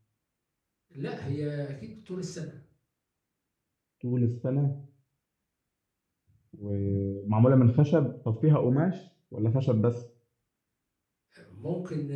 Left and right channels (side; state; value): both; identical; correlation 1.00